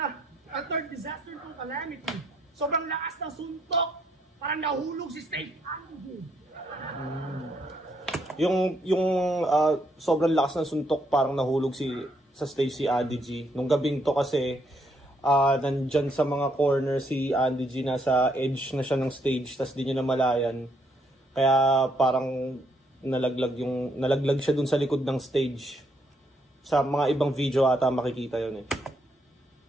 A third disaster to calamity. Sobrang lakas ng suntok. Parang nahulog si Stacey Adige. Yung sobrang lakas ng suntok parang nahulog sa Stacey Adige. Nung gabing to kasi nandyan sa mga corner si Adige, nasa edge na siya ng stage, tas di niya namalayan. Kaya parang nalaglag siya dun sa likod ng stage. Sa mga ibang video ata makikita yun eh.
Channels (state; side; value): normal; both; correlation 0.73